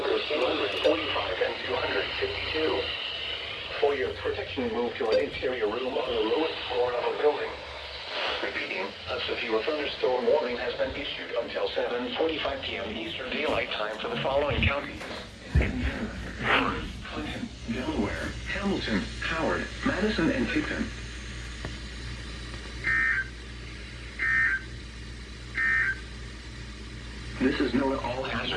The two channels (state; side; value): identical; both; correlation 1.00